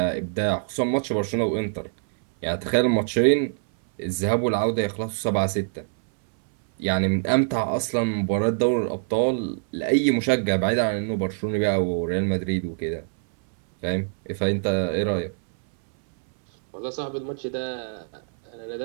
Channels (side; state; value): left; silent; 62 dB below the other